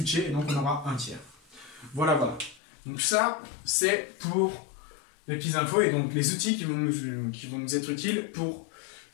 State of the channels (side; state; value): right; drops out; at 2.6 s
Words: et donc on aura 1 tiers. Voilà, voilà. Donc ça, c'est pour les petites infos et donc les outils qui vont nous être utiles pour